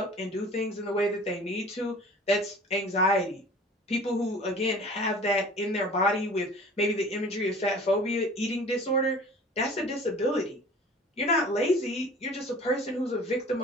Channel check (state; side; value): normal; both; correlation 0.44